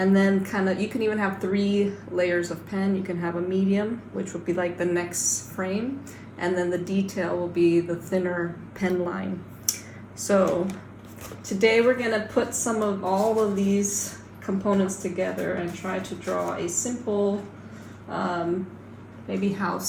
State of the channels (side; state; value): both; identical; correlation 1.00